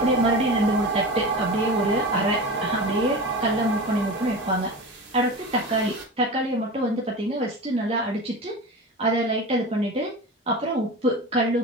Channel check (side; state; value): both; normal; correlation 0.29